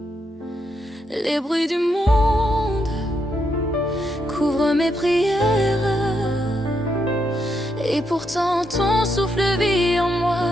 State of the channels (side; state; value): both; normal; correlation 0.80